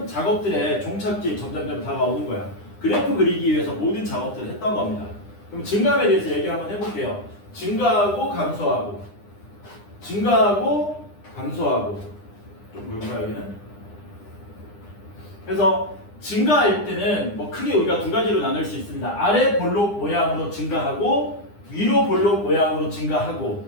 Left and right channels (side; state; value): right; late; 9.9 ms